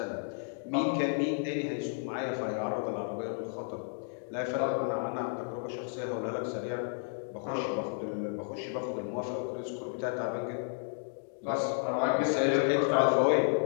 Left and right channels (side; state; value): right; silent; digital silence